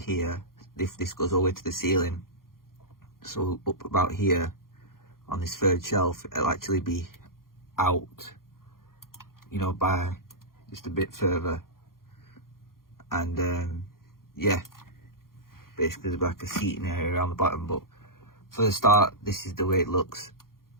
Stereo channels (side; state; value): right; late; 0.92 ms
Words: if this goes all the way to the ceiling. So up about here on this third shelf, it'll actually be out, you know, by just a bit further. And yeah, basically there's like a seating area around the bottom. But for the start, this is the way it looks.